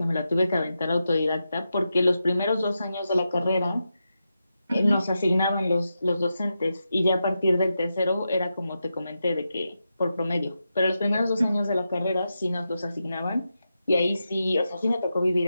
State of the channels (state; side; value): inverted; both; correlation -0.88